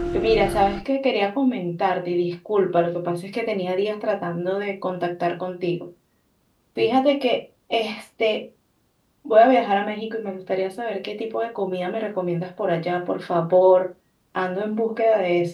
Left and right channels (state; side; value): identical; both; correlation 1.00